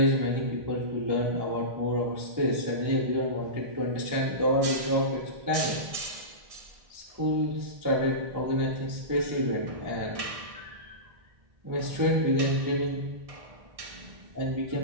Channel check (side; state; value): left; late; 1.6 ms